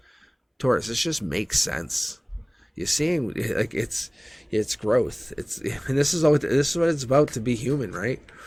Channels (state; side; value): identical; both; correlation 1.00